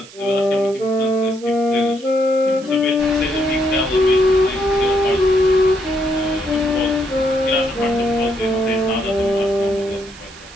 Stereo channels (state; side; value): noise; right; hiss, 20 dB below the sound